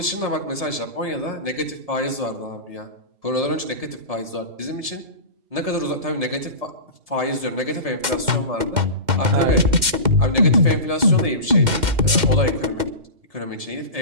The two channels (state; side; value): late; left; 2.1 ms